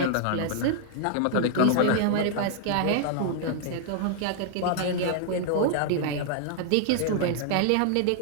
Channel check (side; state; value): both; different; correlation -0.01